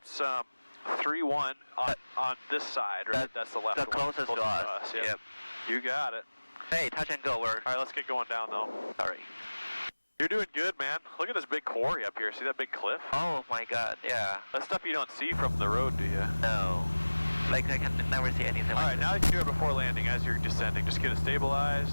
31 on this side, right? That's the left the one. closest to us. Yep. You got it. Hey, touch and go. Alright, let's get going down though. Sorry. You're doing good, man. Look at this big quarry up here. See that big cliff? Oh my god, yeah. That's stuff you don't see from the road, do you? No. Like, I can never see anything like Alright, now you can do it before landing as you're descending. Just get it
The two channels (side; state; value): both; inverted; correlation -1.00